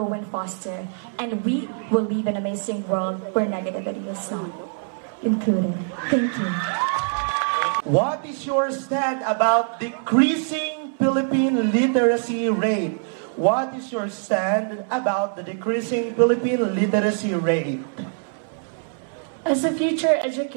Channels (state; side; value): silent; left; 63 dB below the other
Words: and foster. And we will live in an amazing world where negativity is not included. Thank you. What is your stand about decreasing Philippine literacy rate? What is your stand about the decreasing Philippine literacy rate? As a future